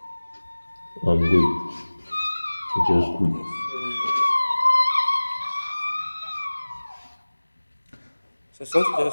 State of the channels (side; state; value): both; inverted; correlation -1.00